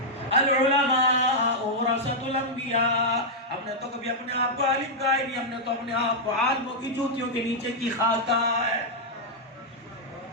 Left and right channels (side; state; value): both; normal; correlation -0.05